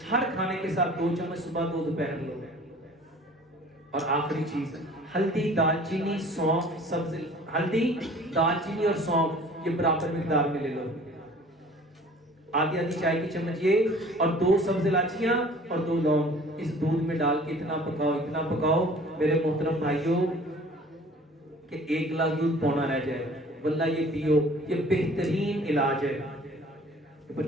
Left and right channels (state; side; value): normal; both; correlation 0.49